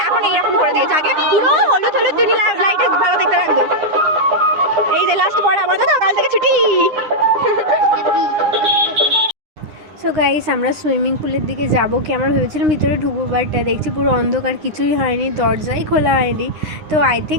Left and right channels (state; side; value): late; left; 9.8 ms